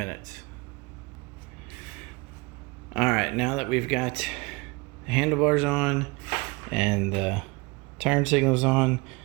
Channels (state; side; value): quieter; left; 26.1 dB